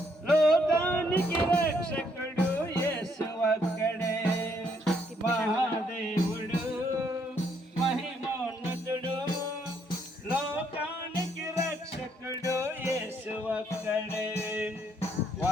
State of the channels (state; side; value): normal; both; correlation 0.71